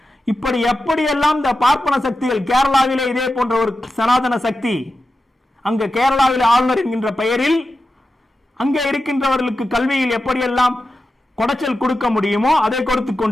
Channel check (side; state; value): both; normal; correlation 0.91